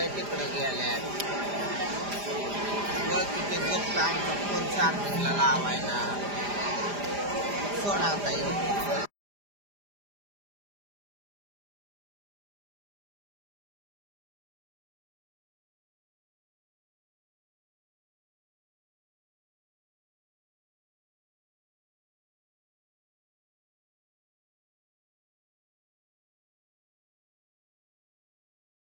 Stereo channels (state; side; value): late; left; 4.9 ms